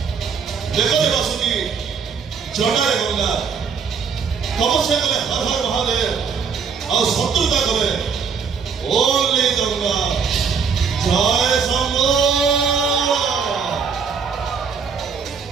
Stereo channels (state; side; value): quieter; left; 6.0 dB